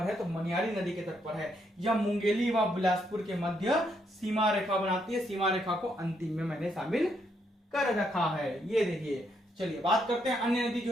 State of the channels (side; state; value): both; normal; correlation 0.76